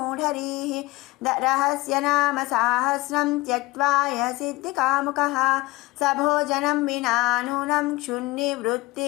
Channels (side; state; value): right; quieter; 21.6 dB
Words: रहस्यनाम सहस्रं त्यक्त्वा यः सिद्धिकामुकः स भोजनं विना नूनं